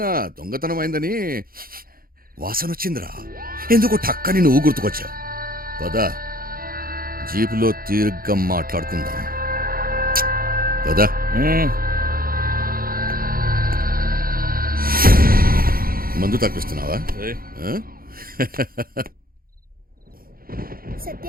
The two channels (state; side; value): late; left; 0.42 ms